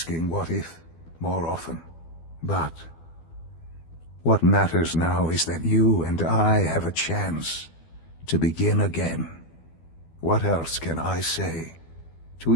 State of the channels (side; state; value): right; late; 12 ms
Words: what if more often. But what matters now is that you and I have a chance to begin again. What else can I say to